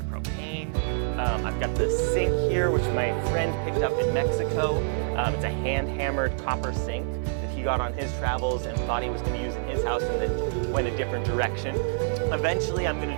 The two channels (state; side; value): silent; left; digital silence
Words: propane. I've got the sink here, which my friend picked up in Mexico. It's a hand-hammered copper sink that he got on his travels and thought he was going to use in his house and then went a different direction. Eventually, I'm going